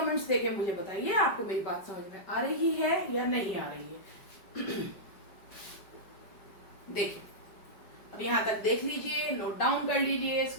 देके मुझे बताइए आपको मेरी बात समझ में आ रही है या नहीं आ रही है। देखिए, अब यहां तक देख लीजिए, नोट डाउन कर लीजिए,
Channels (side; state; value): right; late; 5.0 ms